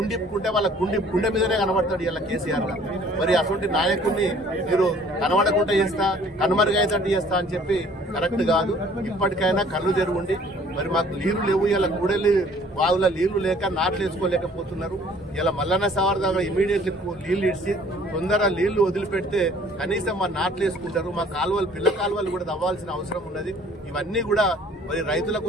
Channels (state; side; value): normal; both; correlation 0.55